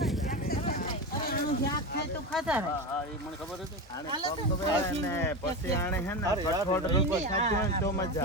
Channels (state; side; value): normal; both; correlation 0.20